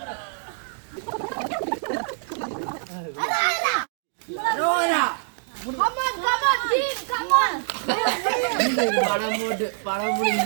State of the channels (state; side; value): silent; left; digital silence